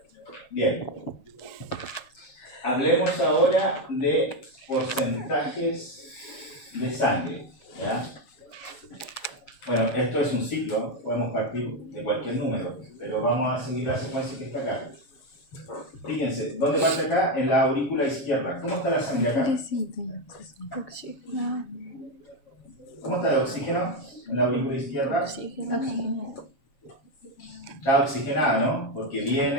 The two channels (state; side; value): late; right; 7.2 ms